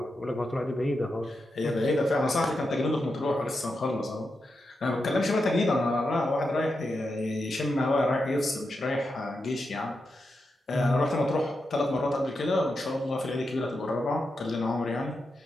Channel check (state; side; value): normal; both; correlation 0.87